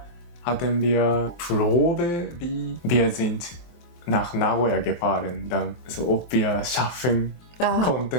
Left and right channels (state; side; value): late; right; 23 ms